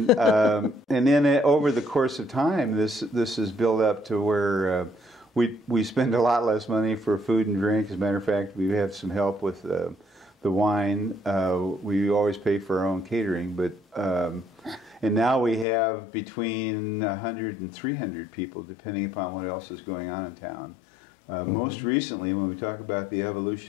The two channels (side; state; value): right; drops out; at 15.7 s